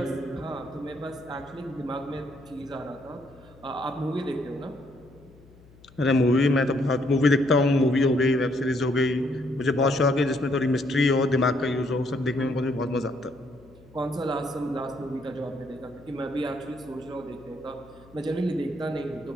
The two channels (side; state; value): left; noise; hum, 25 dB below the sound